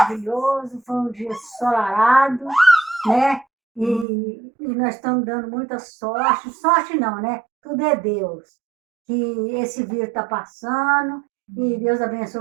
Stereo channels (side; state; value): left; drops out; at 4.0 s